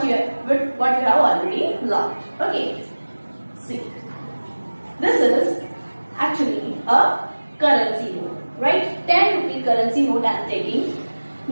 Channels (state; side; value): inverted; both; correlation -1.00